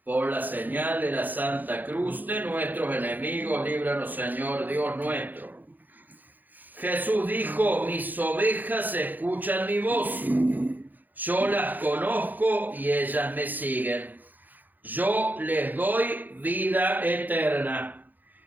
Por la señal de la Santa Cruz de nuestros enemigos, líbranos, Señor Dios nuestro. Jesús dijo: mis ovejas escuchan mi voz. Yo las conozco y ellas me siguen. Yo les doy vida eterna.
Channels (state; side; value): late; left; 0.085 ms